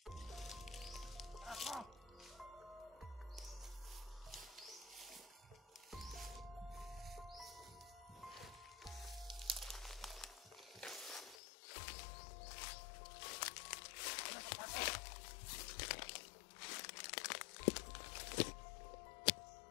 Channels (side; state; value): right; drops out; at 11.4 s